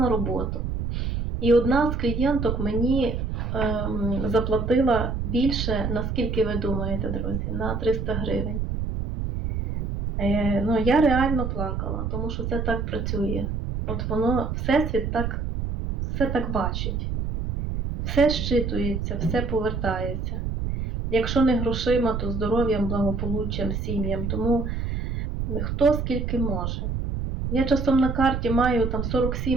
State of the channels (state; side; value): noise; right; rumble, 2 dB below the sound